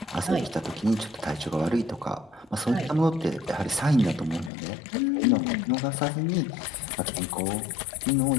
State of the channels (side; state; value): right; drops out; at 4.5 s